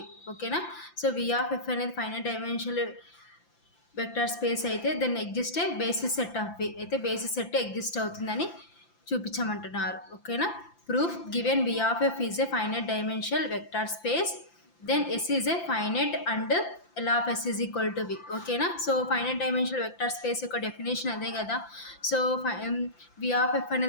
ఓకేనా. So V of f అనేది finite dimensional vector space అయితే then exist a basis set of V అయితే basis set exist అవుతుందని చూపించమంటున్నారు. ఓకేనా. Proof, given V of f is a finite dimensional vector space then S is a finite and L of S is equal to V. ఓకేనా. So finite dimensional vector space యొక్క definition అదే కదా. So V of f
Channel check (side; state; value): right; late; 5.9 ms